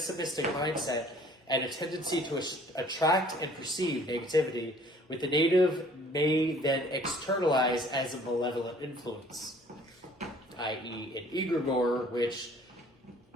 mindset and a tendency to attract and perceive negativity, with the native may then externalize as a malevolent influence, i.e. an egregore, which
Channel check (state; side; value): normal; both; correlation 0.54